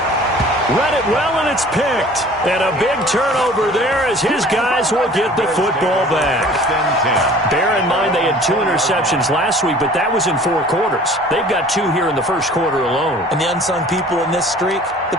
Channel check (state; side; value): normal; both; correlation 0.48